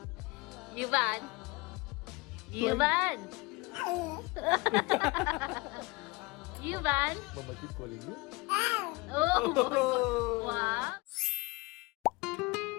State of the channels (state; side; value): quieter; right; 24.9 dB